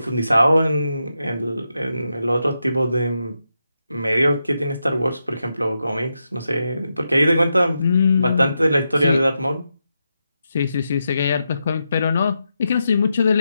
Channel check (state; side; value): inverted; both; correlation -0.86